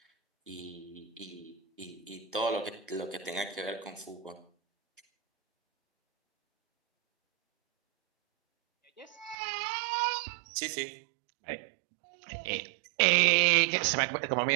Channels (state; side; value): drops out; left; at 9.3 s